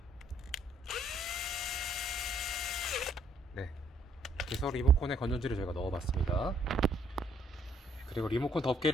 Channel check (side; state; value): both; normal; correlation 0.66